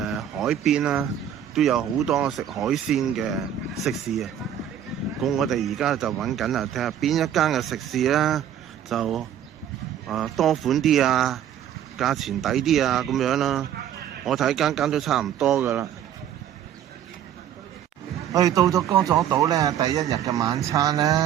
海邊啦，都有好多食海鮮嘅食肆啊。咁我哋而家就揾緊啊，睇下邊一間嘅食肆咧就多款啲啊，價錢抵啲啊咁樣啦。我睇間間都差唔多噶啦。我哋到咗歌佐島咧，第一日嘅晚餐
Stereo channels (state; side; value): quieter; left; 10.0 dB